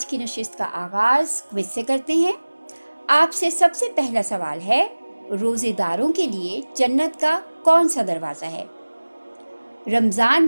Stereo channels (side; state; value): both; inverted; correlation -1.00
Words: की नशिस्त का आगाज़ क्विज से करते हैं। आपसे सबसे पहला सवाल है, रोज़ेदारों के लिए जन्नत का कौन सा दरवाज़ा है?